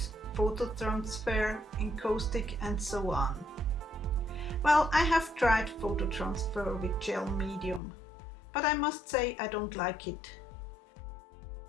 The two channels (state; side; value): drops out; right; at 7.8 s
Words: photo transfer, encaustic and so on. Well, I have tried photo transfer with gel medium, but I must say I don't like it.